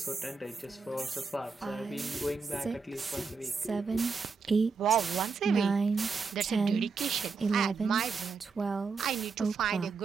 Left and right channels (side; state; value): left; quieter; 4.9 dB